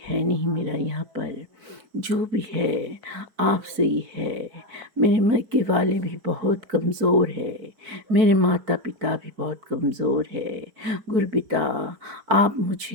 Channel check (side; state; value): left; late; 4.6 ms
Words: है नहीं मेरा यहाँ पर, जो भी है आपसे ही है। मेरे मायके वाले भी बहुत कमज़ोर है, मेरे माता पिता भी बहुत कमज़ोर है। गुरुपिता आप